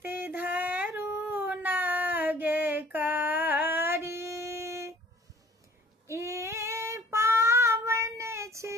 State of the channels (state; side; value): normal; both; correlation 0.53